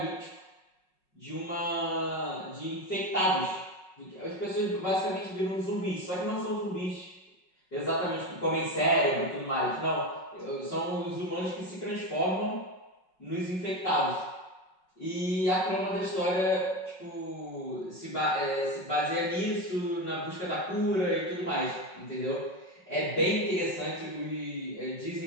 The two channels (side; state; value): right; late; 5.4 ms